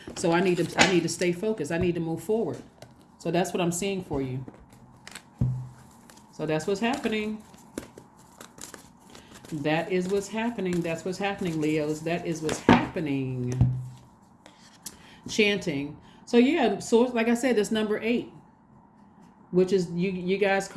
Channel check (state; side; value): identical; both; correlation 1.00